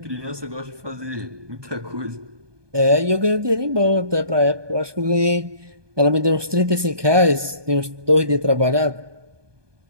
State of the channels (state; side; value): late; left; 1.2 ms